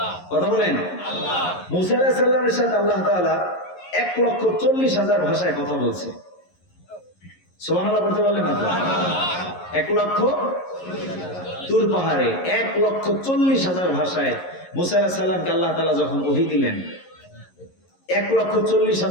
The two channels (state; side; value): late; right; 11 ms